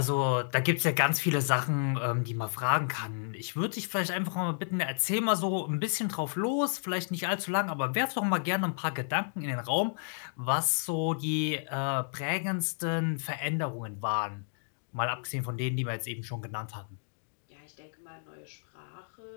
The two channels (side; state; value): right; silent; digital silence